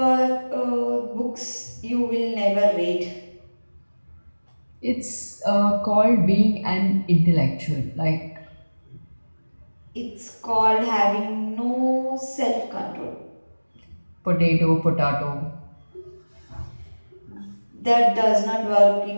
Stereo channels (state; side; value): inverted; both; correlation -1.00